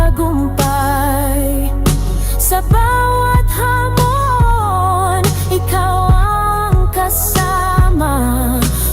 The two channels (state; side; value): identical; both; correlation 1.00